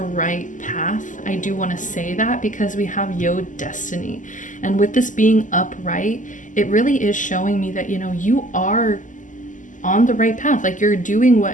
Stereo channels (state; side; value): late; right; 0.37 ms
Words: path. I do want to say that because we have Yod, Destiny, and with this being upright, it really is showing me that, you know, you are on the right path. Like, you're doing